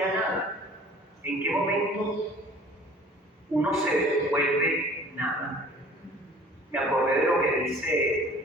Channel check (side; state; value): both; normal; correlation 0.49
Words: nada. ¿En qué momento uno se vuelve nada? Me acordé de lo que